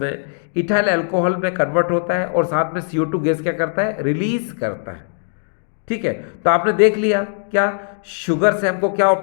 इथाइल अल्कोहल में कन्वर्ट होता है और साथ में CO2 गैस क्या करता है? रिलीज करता है। ठीक है, तो आपने देख लिया क्या शुगर से हमको क्या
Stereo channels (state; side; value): silent; right; digital silence